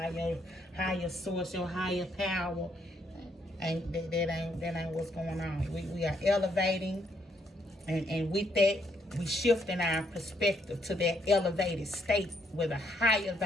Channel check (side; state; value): both; normal; correlation 0.73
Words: your higher source, your higher power, that ain't what's going on. We are elevating, and with that, we shifting our perspective to that elevated state with a higher